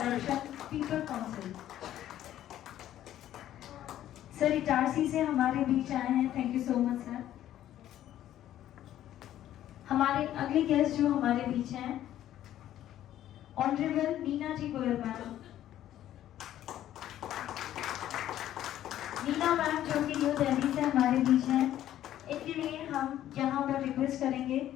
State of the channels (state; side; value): quieter; right; 12.3 dB